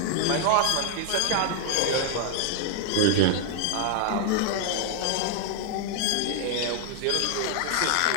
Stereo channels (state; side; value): different; both; correlation 0.00